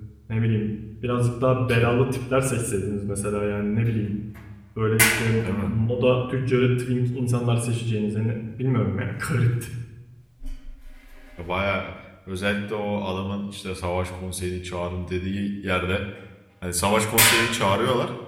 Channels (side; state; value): both; identical; correlation 1.00